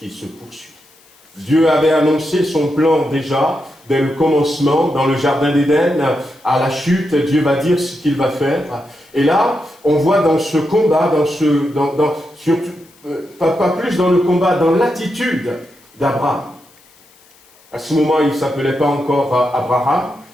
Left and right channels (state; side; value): noise; left; hiss, 29 dB below the sound